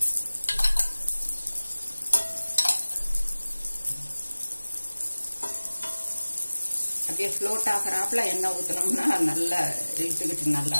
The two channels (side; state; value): both; inverted; correlation -1.00